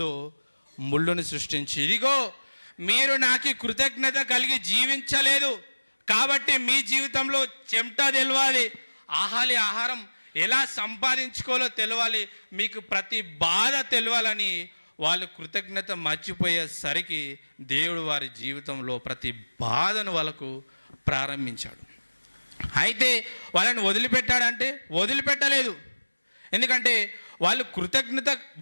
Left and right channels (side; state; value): both; inverted; correlation -1.00